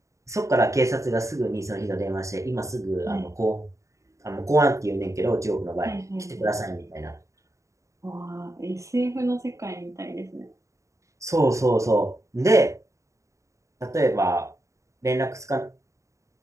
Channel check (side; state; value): left; late; 0.15 ms